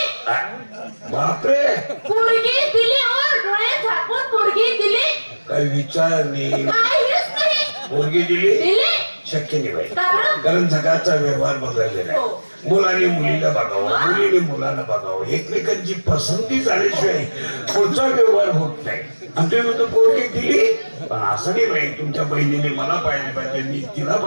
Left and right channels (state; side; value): inverted; both; correlation -1.00